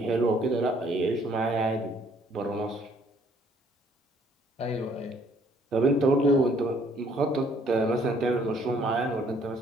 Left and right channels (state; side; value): normal; both; correlation 0.63